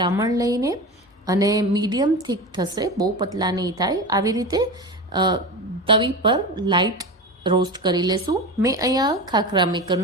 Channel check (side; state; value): both; normal; correlation 0.26